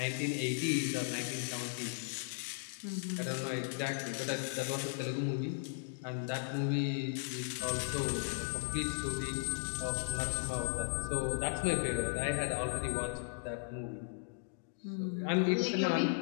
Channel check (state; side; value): silent; right; digital silence